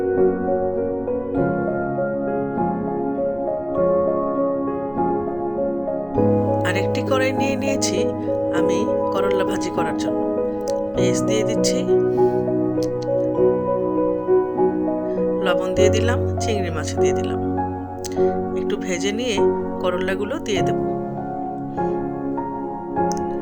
আরেকটি কড়াই নিয়ে নিয়েছি আমি করলা ভাজি করার জন্য। পেঁয়াজ দিয়ে দিচ্ছি, লবণ দিয়ে দিলাম, চিংড়ি মাছ দিয়ে দিলাম। একটু ভেজে নিয়ে করলাগুলো দিয়ে দেব।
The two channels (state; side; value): identical; both; correlation 1.00